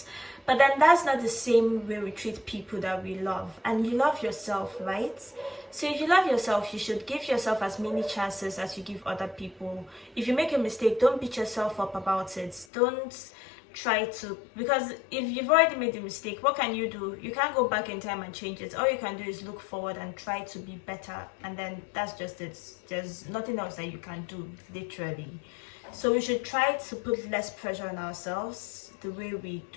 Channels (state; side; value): drops out; right; at 12.7 s